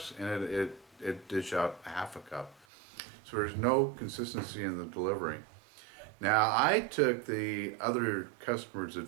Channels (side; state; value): left; drops out; at 2.7 s